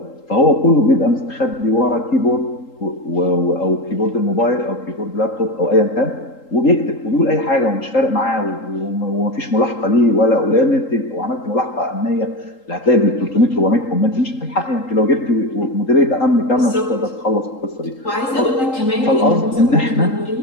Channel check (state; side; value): late; right; 3.8 ms